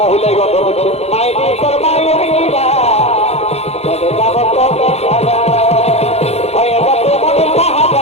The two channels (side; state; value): right; late; 0.31 ms